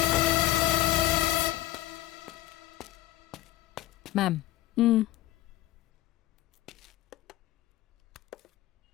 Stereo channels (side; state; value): right; quieter; 15.5 dB